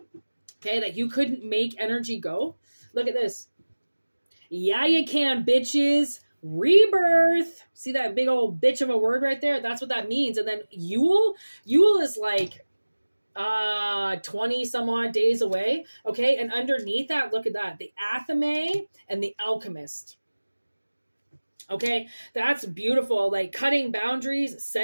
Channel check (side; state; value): both; inverted; correlation -1.00